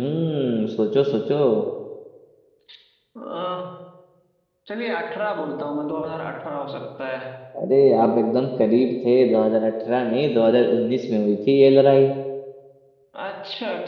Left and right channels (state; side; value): identical; both; correlation 1.00